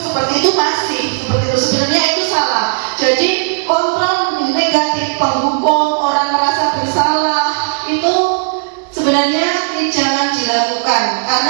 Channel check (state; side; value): silent; left; digital silence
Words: seperti itu masih, seperti itu sebenarnya itu salah. Jadi kontrol negatif, penghukum, orang merasa bersalah, itu sebenarnya jangan dilakukan